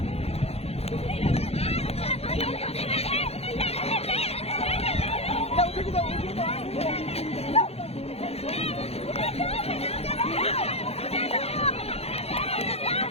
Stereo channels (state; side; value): late; right; 0.29 ms